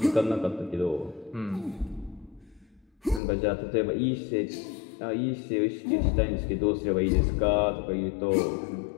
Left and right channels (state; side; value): drops out; right; at 3.2 s